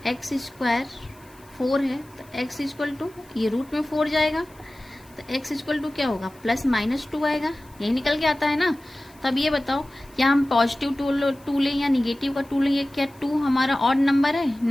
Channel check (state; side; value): noise; left; hiss, 27 dB below the sound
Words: एक्स स्क्वायर 4 है तो एक्स इक्वल टू, ये रूट में 4 जाएगा तो एक्स इक्वल टू क्या होगा? प्लस माइनस 2 आएगा। यही निकल के आता है ना। तो अब ये बताओ, क्या हम पॉजिटिव 2 लें या निगेटिव का 2 लें? ये क्या 2 हमारा ऑड नंबर है?